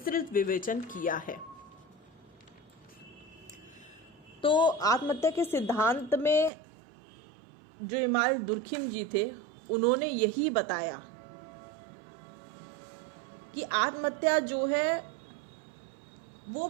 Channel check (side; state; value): left; drops out; at 6.5 s